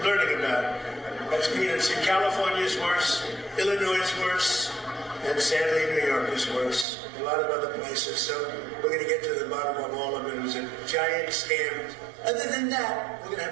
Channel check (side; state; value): left; drops out; at 6.9 s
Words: learning about. That's peanuts. In California is worse, Illinois is worse, and sadly New York is worse. A lot of other places. So we're going to get to the bottom of all of it. It was a giant scam. Other than that, we're going to have